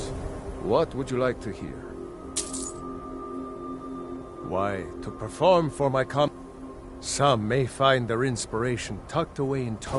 what would you like to hear? Why, to perform for my Some may find their inspiration tucked away in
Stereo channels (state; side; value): identical; both; correlation 1.00